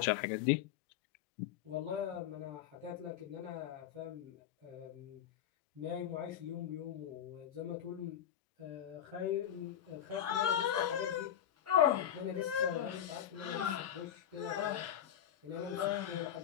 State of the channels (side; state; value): right; quieter; 10.2 dB